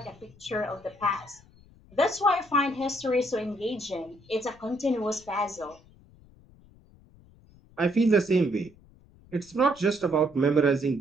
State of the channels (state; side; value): noise; left; rumble, 26 dB below the sound